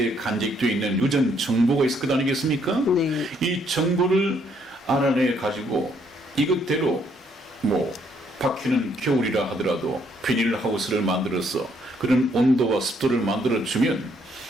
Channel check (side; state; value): both; normal; correlation 0.69